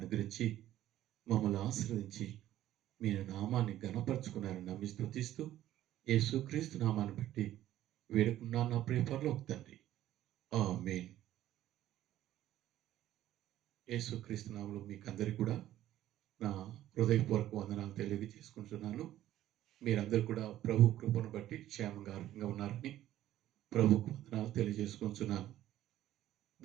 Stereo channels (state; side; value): quieter; left; 13.2 dB